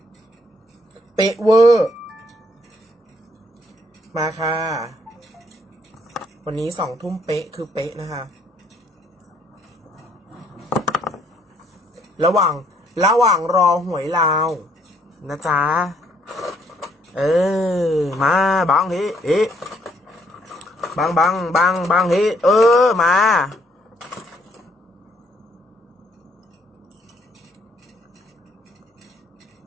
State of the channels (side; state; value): both; normal; correlation 0.68